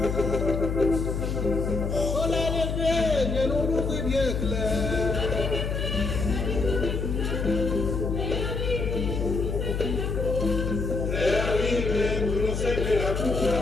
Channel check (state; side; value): noise; left; hum, 2 dB below the sound